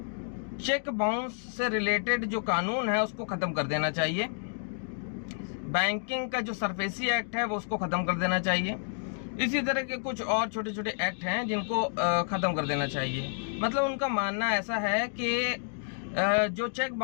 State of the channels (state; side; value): silent; right; digital silence